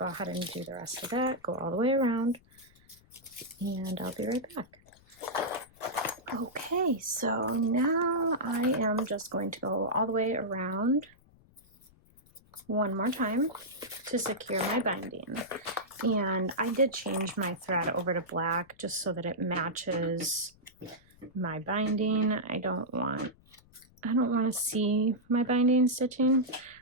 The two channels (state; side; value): noise; left; rumble, 29 dB below the sound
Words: ahead and do the rest of that, go all the way around, and I'll be right back. Okay, so now I am just going to go all the way around one more time to secure my binding. And I did change my thread over to black just so that it matches my binding. I don't want to see my binding stitching.